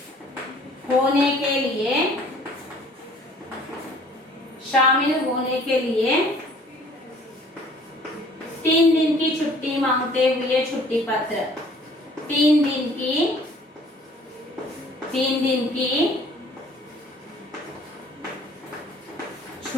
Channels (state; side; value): normal; both; correlation 0.54